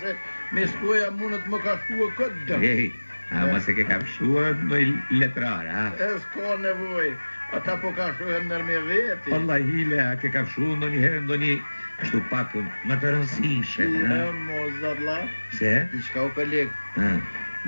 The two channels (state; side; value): inverted; both; correlation -1.00